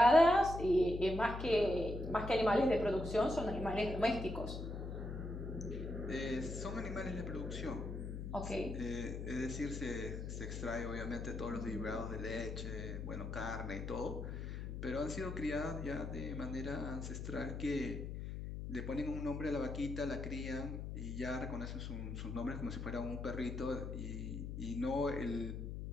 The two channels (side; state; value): left; noise; hum, 5 dB below the sound